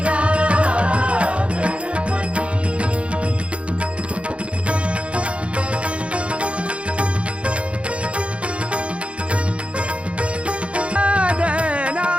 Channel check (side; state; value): left; late; 0.061 ms